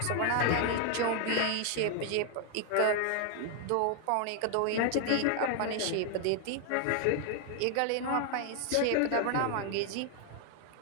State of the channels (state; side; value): different; both; correlation 0.00